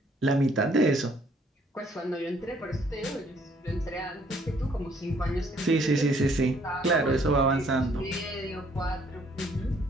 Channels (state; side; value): normal; both; correlation 0.64